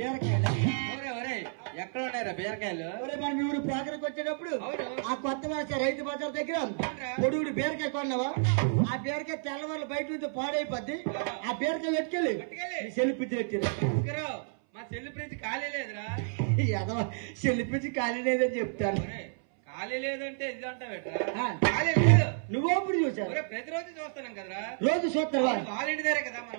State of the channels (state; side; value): silent; left; 57 dB below the other